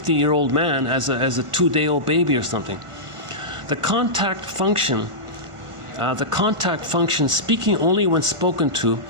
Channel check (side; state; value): left; late; 1.5 ms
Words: man, as a 2-day-old baby or something. The contact function, speaking only when spoken to